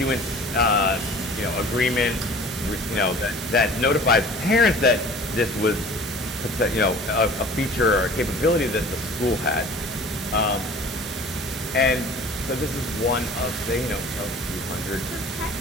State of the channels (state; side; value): normal; both; correlation 0.45